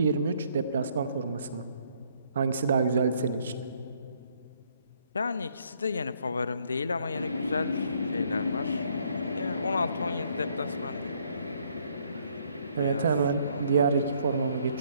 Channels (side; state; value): both; inverted; correlation -0.67